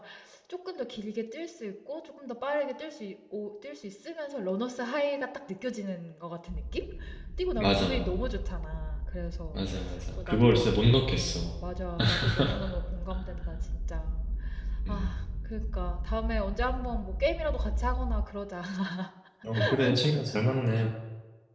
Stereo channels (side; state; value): both; identical; correlation 1.00